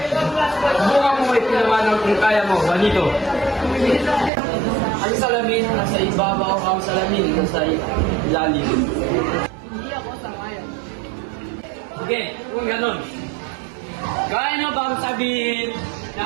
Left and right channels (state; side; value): drops out; left; at 4.3 s